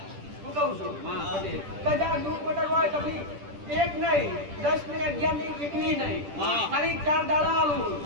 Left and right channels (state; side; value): late; left; 10 ms